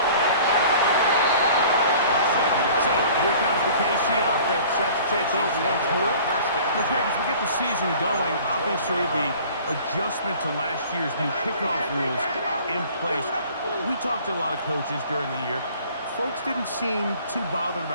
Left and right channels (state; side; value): inverted; both; correlation -0.48